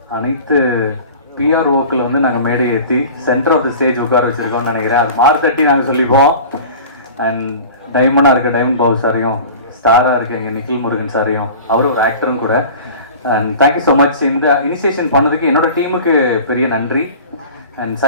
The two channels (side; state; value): both; inverted; correlation -0.39